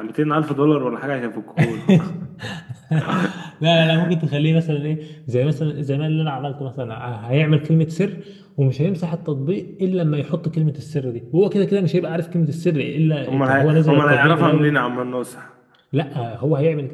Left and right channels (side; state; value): both; identical; correlation 1.00